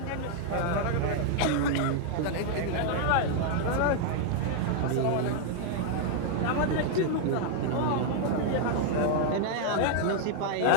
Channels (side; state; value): both; different; correlation 0.00